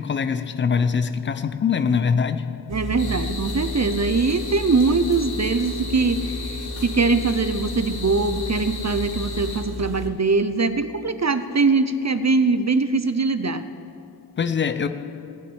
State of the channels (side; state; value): both; normal; correlation 0.31